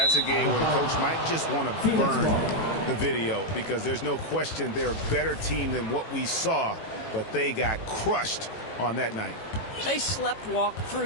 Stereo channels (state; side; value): late; right; 18 ms